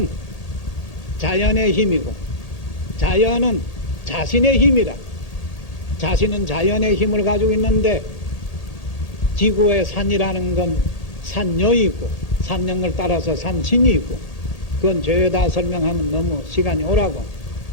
자연의 힘이고 자연은 자신의 힘이라. 자신은 자연의 힘을 가지고 있는데 지구의 산이라는 건 산여이 있고 산령을 따라서 산신이 있고 그건 죄다 설명하면 너무 시간이 오라고.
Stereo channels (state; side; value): late; right; 1.8 ms